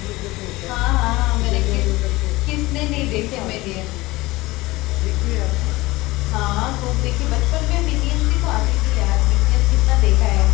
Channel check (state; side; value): quieter; right; 20.2 dB